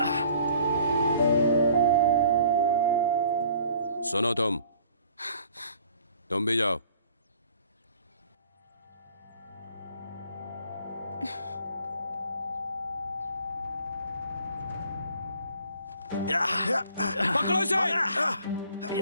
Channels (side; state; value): both; inverted; correlation -0.54